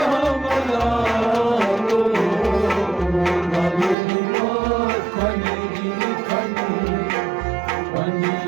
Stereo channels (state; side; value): drops out; left; at 4.0 s